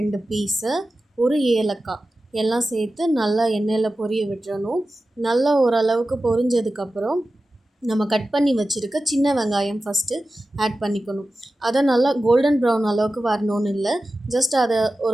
பீஸு, 1 ஏலக்காய் எல்லாம் சேர்த்து நல்லா எண்ணெயில் பொரிய விட்டுறணும். நல்லா ஓரளவுக்கு பொரிஞ்சதுக்கப்புறம் நம்ம கட் பண்ணி வச்சுருக்க சின்ன வெங்காயம் ஃபஸ்ட்டு ஆட் பண்ணிக்கணும். அதை நல்லா கோல்டன் ப்ரௌன் அளவுக்கு வரணும்னு இல்லை, ஜஸ்ட் அதை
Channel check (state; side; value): normal; both; correlation 0.94